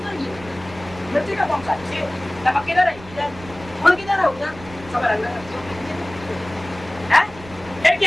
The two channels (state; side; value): noise; right; rumble, 18 dB below the sound